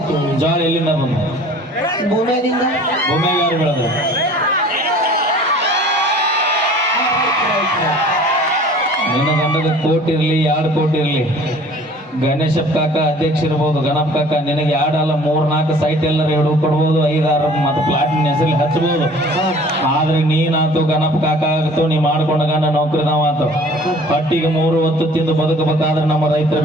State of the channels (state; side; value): normal; both; correlation 0.49